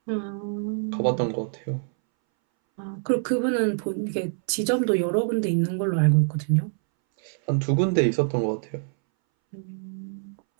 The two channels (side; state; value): left; silent; 61 dB below the other